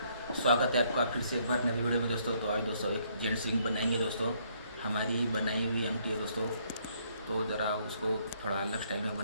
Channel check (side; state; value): both; inverted; correlation -0.69